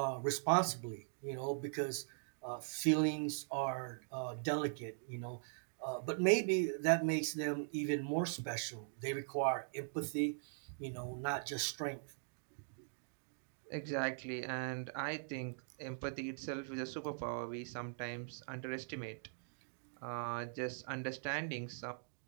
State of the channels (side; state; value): left; silent; digital silence